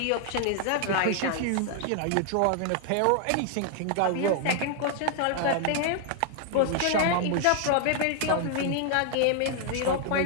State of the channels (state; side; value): different; both; correlation 0.00